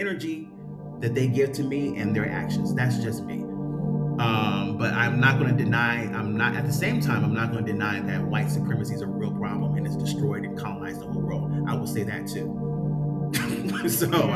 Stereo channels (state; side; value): identical; both; correlation 1.00